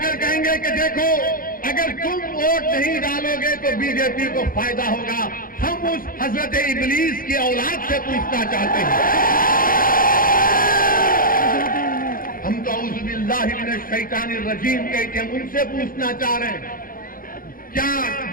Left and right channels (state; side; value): late; right; 0.41 ms